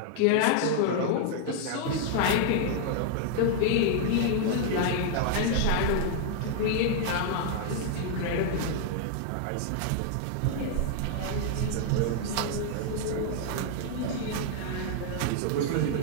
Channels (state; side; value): different; both; correlation 0.00